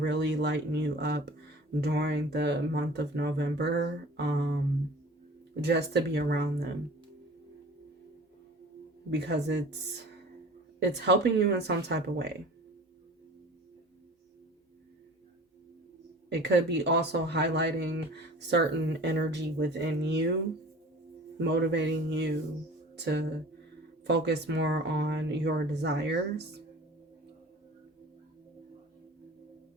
lighten you up during the month of November, just to be around them, because it's helping you in some type of way. It could be also highlighting certain energy within you, motivating you to focus more on your desires.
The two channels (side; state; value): both; normal; correlation 0.42